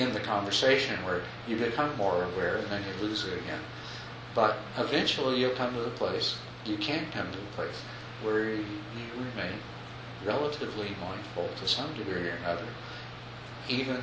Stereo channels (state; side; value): identical; both; correlation 1.00